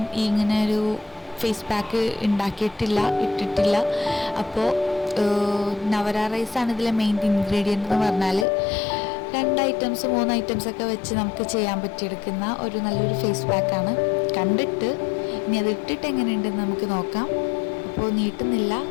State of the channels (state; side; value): drops out; right; at 8.5 s